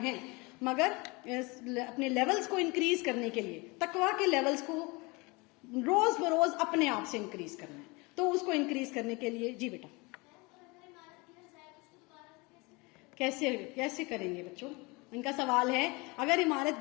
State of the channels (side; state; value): right; quieter; 26.4 dB